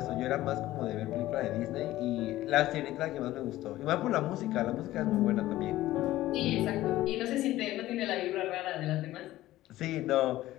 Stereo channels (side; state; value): right; quieter; 15.6 dB